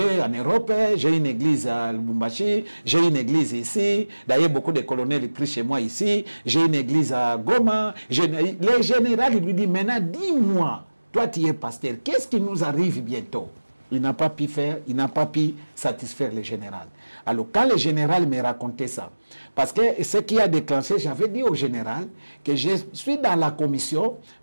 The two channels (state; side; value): inverted; both; correlation -1.00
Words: en Europe, j'ai une église à Lubumbashi, j'ai une église ici. D'ailleurs, beaucoup de colonels prient chez moi ici. J'ai une église à Goma. Le général lui dit, maintenant, dis-moi, toi tu es pasteur, qu'est-ce qui nous arrive bientôt? Il n'a pas pu faire, il n'a pas pu satisfaire le général. Alors, quand le général me racontait ça, parce que ce qui a déclenché, j'avais dit au général que je suis dans la commission,